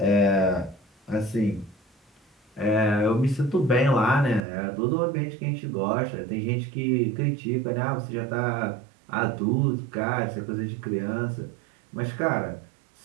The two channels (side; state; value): left; drops out; at 4.4 s